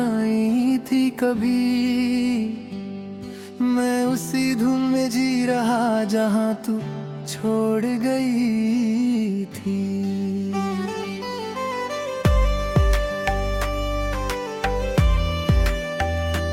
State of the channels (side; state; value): both; identical; correlation 1.00